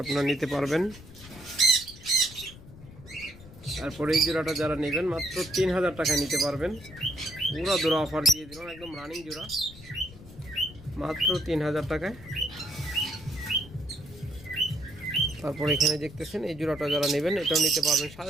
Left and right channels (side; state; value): left; noise; rumble, 18 dB below the sound